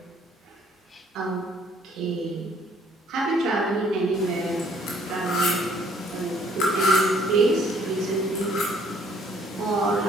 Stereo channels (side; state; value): both; normal; correlation 0.62